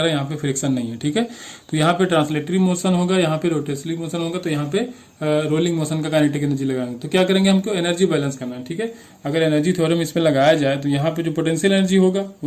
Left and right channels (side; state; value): both; identical; correlation 1.00